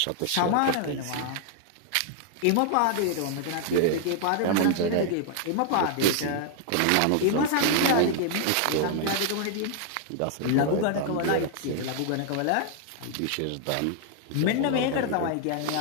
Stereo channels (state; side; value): different; both; correlation 0.00